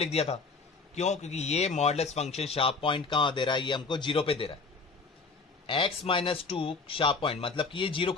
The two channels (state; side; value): quieter; right; 4.2 dB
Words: दिया था, क्यों, क्योंकि ये मॉडुलस फंक्शन शार्प पॉइंट कहां दे रहा है, ये हमको 0 पे दे रहा है। x माइनस 2 शार्प पॉइंट मतलब कि ये 0